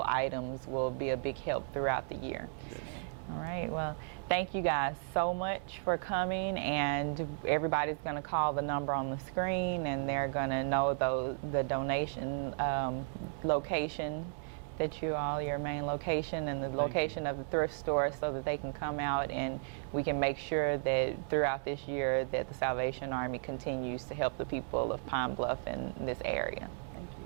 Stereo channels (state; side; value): silent; left; digital silence